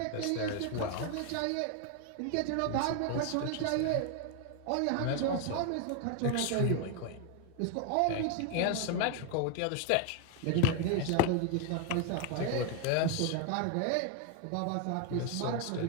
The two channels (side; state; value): both; different; correlation 0.01